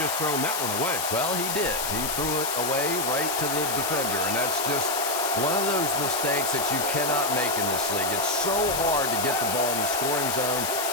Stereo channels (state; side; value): noise; left; hiss, 2 dB below the sound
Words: thrown that one away. Well, he did. He threw it away right to the defender, and that's just one of those mistakes that you cannot make in this league. It's so hard to get the ball in the scoring zone,